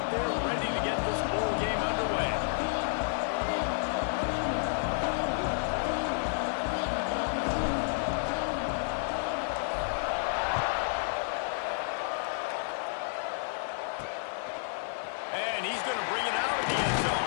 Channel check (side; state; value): right; silent; 57 dB below the other